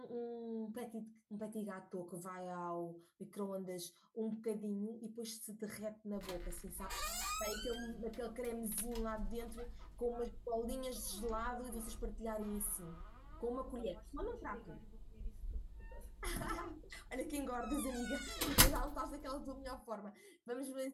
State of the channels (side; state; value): both; identical; correlation 1.00